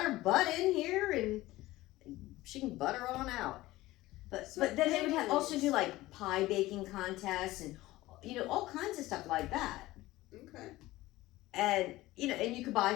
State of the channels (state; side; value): quieter; right; 17.7 dB